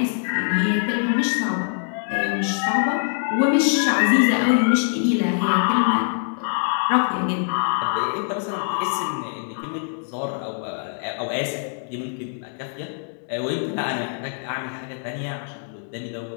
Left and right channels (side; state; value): right; silent; 63 dB below the other